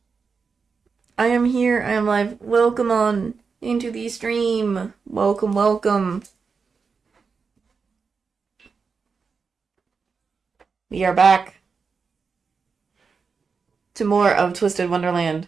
I am here. I am live. Welcome on into the stream. Welcome, welcome. We are back to more of Twisted Wonderland.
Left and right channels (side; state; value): left; quieter; 5.2 dB